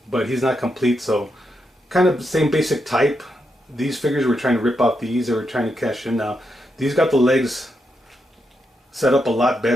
but he's not complete. So kind of the same basic type. These figures were trying to rip off these. They were trying to cash in. Now these got the legs set up a lot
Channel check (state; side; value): normal; both; correlation 0.83